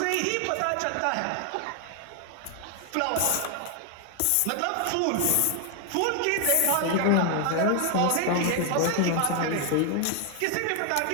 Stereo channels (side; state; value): both; different; correlation 0.00